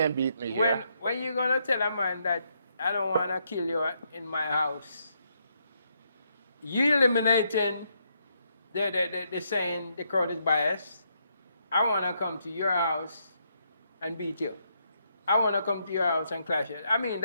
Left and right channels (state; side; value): inverted; both; correlation -0.77